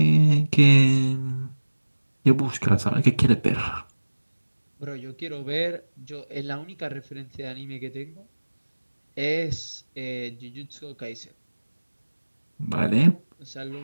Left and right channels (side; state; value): both; inverted; correlation -1.00